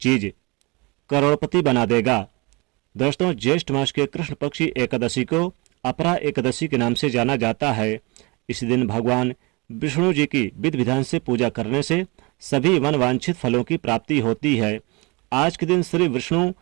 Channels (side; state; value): left; quieter; 27.1 dB